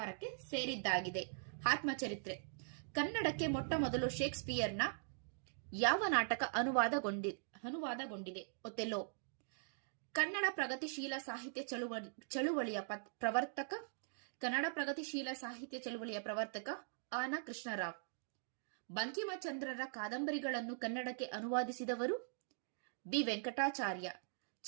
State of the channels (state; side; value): silent; left; digital silence